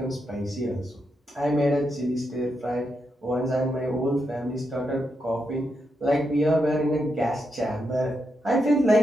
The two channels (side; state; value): both; normal; correlation 0.83